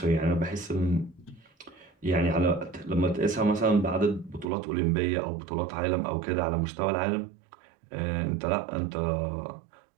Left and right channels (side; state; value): left; drops out; at 4.5 s